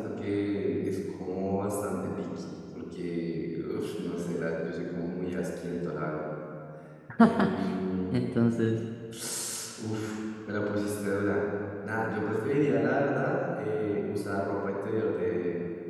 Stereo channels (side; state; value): both; identical; correlation 1.00